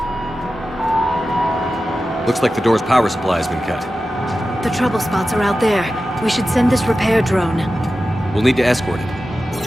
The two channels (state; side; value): normal; both; correlation 0.93